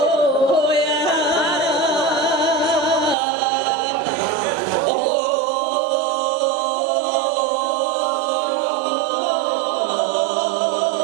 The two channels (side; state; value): left; drops out; at 3.2 s